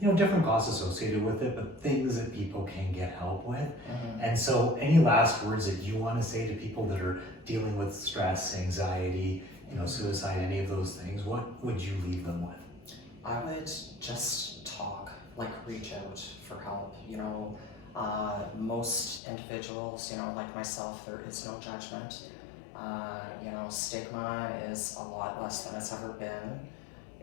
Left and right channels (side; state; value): right; drops out; at 19.2 s